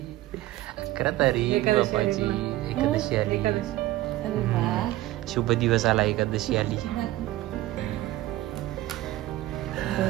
11 तारीख पप्पाची. एकादशी आली. अरे वा, शुभ दिवस आला, एकादशी आली.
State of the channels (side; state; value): left; quieter; 16.3 dB